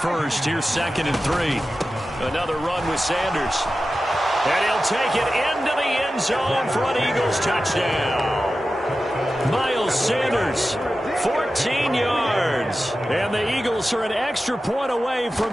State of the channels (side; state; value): both; normal; correlation 0.93